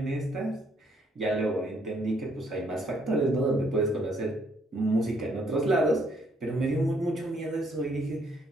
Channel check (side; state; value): both; normal; correlation 0.68